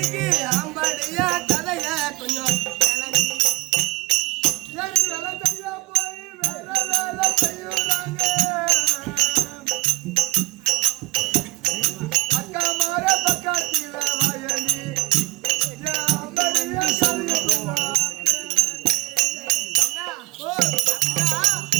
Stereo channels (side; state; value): left; quieter; 20.7 dB